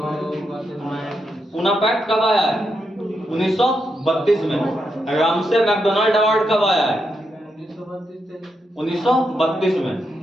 पूना पैक्ट कब आया है? 1932 में। रामसे मैकडोनाल्ड अवार्ड कब आया है? 1932 में,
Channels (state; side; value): normal; both; correlation 0.83